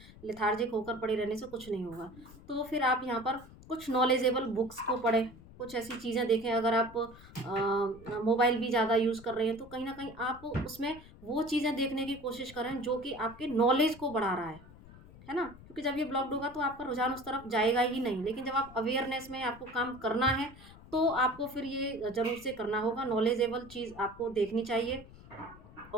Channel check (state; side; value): noise; left; rumble, 20 dB below the sound